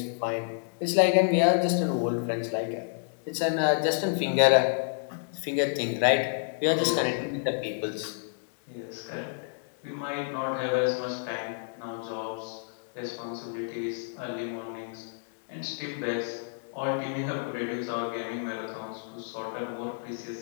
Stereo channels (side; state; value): right; silent; digital silence